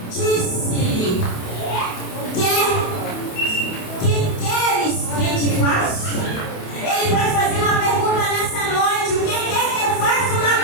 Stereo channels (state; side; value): late; right; 28 ms